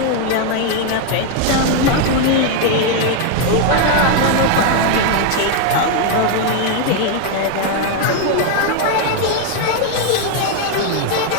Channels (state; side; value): different; both; correlation 0.01